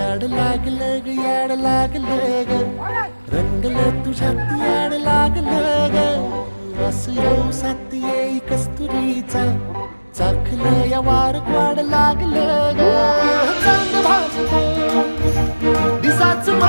याड लागलं ग याड लागलं ग रंगलं तुझ्यात याड लागलं ग वास येऊ साथ येई कस्तुरीचा चाखलं या वार वाड लागलं ग चांद भासलं दिसाच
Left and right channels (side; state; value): both; inverted; correlation -1.00